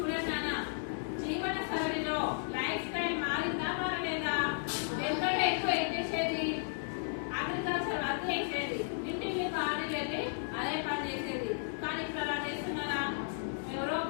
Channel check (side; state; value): right; silent; digital silence